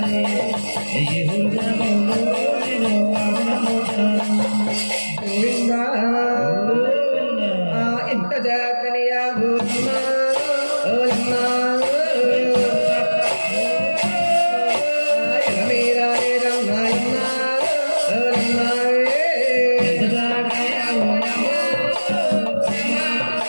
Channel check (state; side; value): inverted; both; correlation -1.00